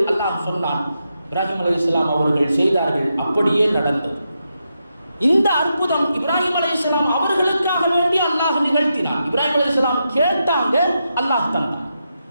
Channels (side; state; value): both; inverted; correlation -0.85